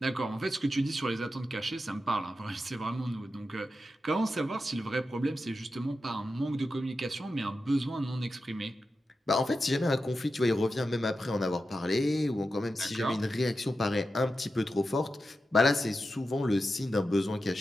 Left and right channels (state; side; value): normal; both; correlation 0.90